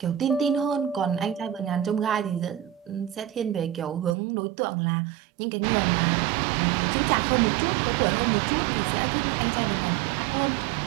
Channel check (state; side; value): drops out; left; at 4.2 s